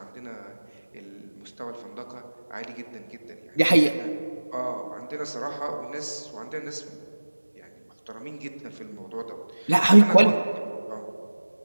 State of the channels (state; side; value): inverted; both; correlation -1.00